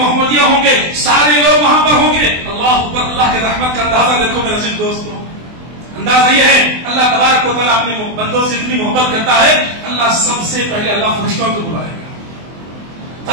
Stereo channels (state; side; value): late; left; 24 ms